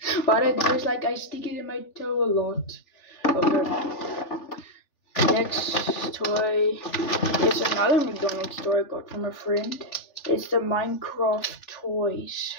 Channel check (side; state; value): right; late; 3.4 ms